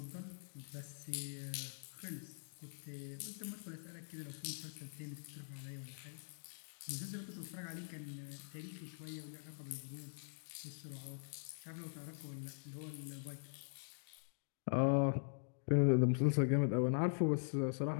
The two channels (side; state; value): right; silent; digital silence